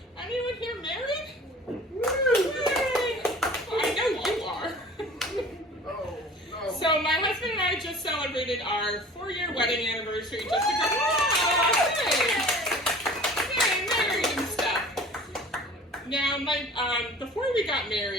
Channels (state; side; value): normal; both; correlation 0.44